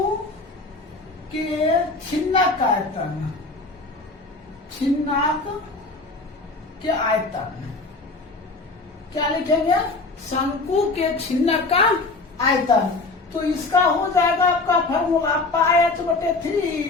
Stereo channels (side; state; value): right; quieter; 3.5 dB